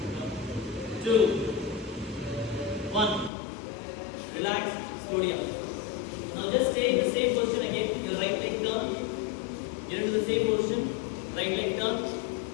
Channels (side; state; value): right; drops out; at 3.3 s